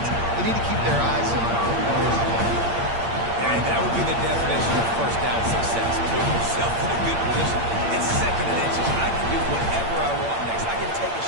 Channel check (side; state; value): left; late; 8.7 ms